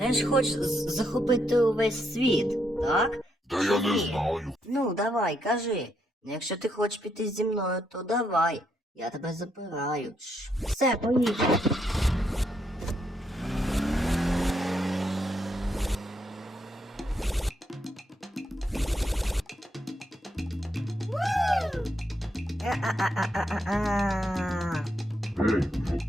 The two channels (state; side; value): normal; both; correlation 0.77